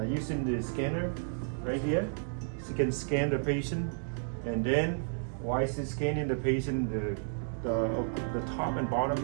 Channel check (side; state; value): left; silent; digital silence